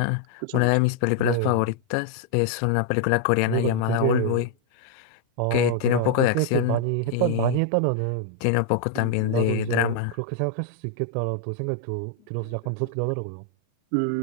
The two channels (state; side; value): different; both; correlation 0.00